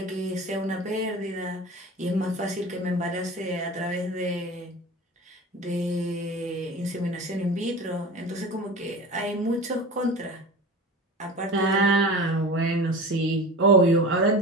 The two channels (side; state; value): both; normal; correlation 0.34